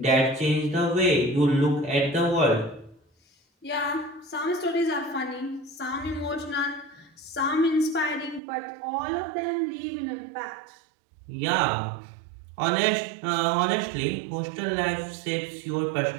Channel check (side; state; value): left; drops out; at 8.4 s